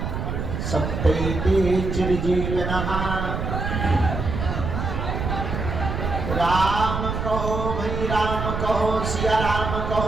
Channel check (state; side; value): noise; right; rumble, 3 dB below the sound